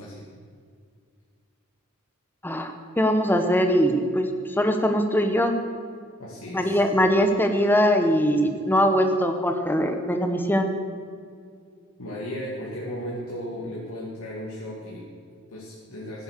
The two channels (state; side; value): normal; both; correlation 0.69